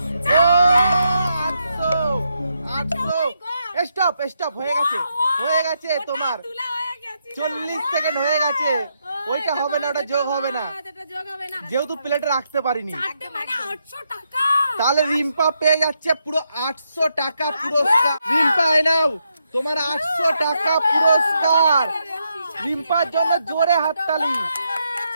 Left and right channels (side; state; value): both; inverted; correlation -0.80